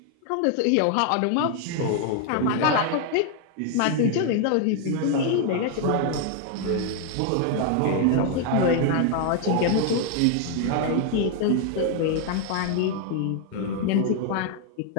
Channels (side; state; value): both; different; correlation 0.00